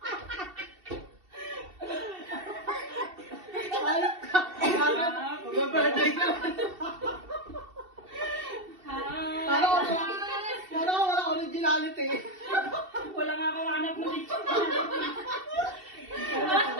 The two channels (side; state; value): left; late; 2.7 ms